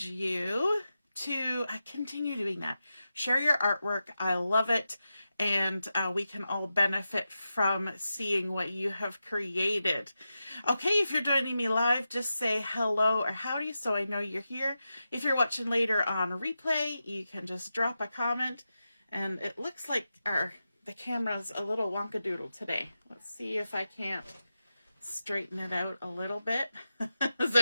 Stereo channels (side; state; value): both; inverted; correlation -0.90